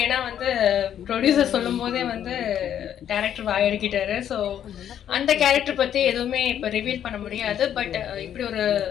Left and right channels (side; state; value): right; quieter; 9.9 dB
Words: ஏன்னா வந்து ப்ரொடியூசர் சொல்லும் போதே வந்து டைரக்டர் வாயடிக்கிட்டாரு. ஸோ அந்த கேரக்டர் பத்தி எதுவுமே இப்போ ரிவீல் பண்ண முடியாது. பட் இப்படி ஒரு